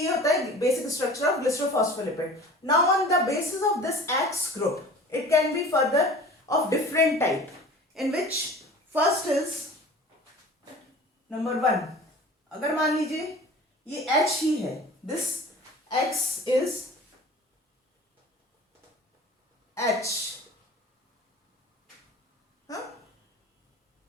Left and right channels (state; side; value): normal; both; correlation 0.41